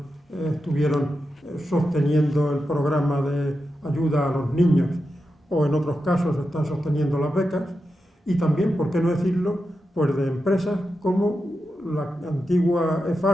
sosteniendo el programa de ayuda a los niños, o en otros casos están sosteniendo las becas, y también, por qué no decirlo, pues de empresas como la antigua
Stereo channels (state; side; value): normal; both; correlation 0.89